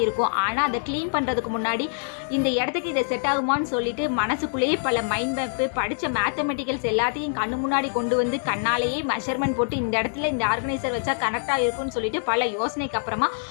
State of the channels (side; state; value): right; silent; digital silence